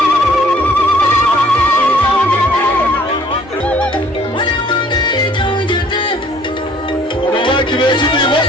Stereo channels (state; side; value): normal; both; correlation 0.58